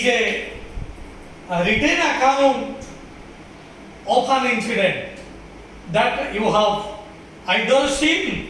a written account of an incident that you have either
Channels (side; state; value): both; identical; correlation 1.00